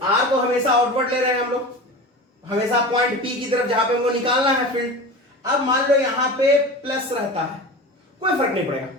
आर को हमेशा आउटवर्ड ले रहे हैं हम लोग, हमेशा पॉइंट पी की तरफ जहां पे हमको निकालना है फील्ड। अब मान लो यहां पे प्लस रहता है, कोई फर्क नहीं पड़ेगा,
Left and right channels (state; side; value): normal; both; correlation 0.32